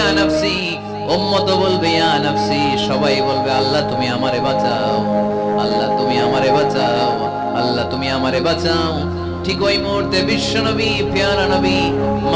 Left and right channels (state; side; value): identical; both; correlation 1.00